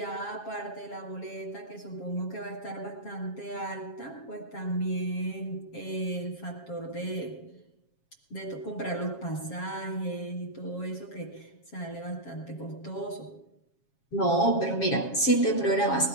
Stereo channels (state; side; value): late; right; 7.3 ms